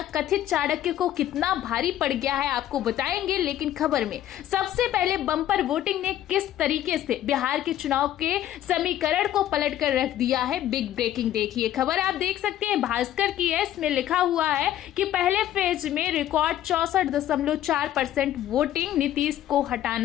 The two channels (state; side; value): quieter; right; 12.4 dB